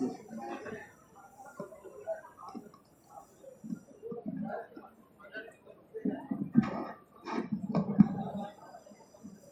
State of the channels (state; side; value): identical; both; correlation 1.00